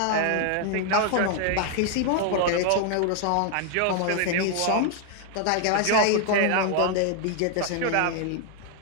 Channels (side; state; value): both; different; correlation 0.00